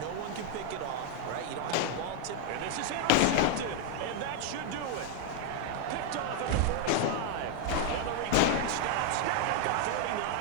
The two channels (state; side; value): different; both; correlation 0.00